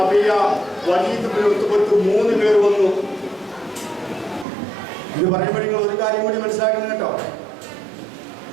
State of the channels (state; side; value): drops out; left; at 4.5 s